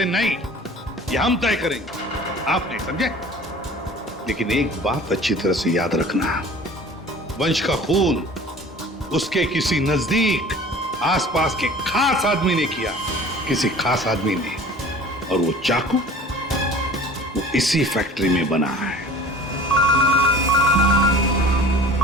नहीं ये हम तय करेंगे, आप नहीं समझे। लेकिन एक बात अच्छी तरह से याद रखना, वंश का खून उसके किसी नजदीक आसपास के खास आदमी ने किया, किसी खास आदमी ने। और वो चाकू वो इसी फैक्ट्री में बना है।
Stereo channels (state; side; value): normal; both; correlation 0.44